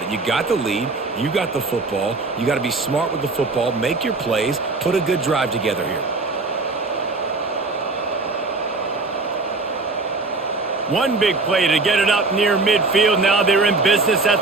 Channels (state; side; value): quieter; left; 3.6 dB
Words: it. You got the lead. You got the football. You got to be smart with the football, make your plays, put a good drive together here. One big play to get it up near midfield. Now they're in business